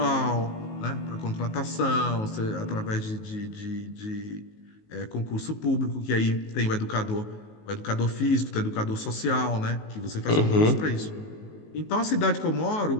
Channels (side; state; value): right; late; 19 ms